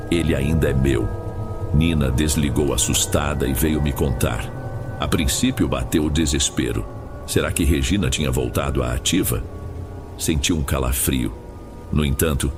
"Ele ainda é meu." Nina desligou assustada e veio me contar. A princípio bateu o desespero. Será que Regina tinha voltado à ativa? Senti um calafrio. No entanto,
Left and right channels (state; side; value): identical; both; correlation 1.00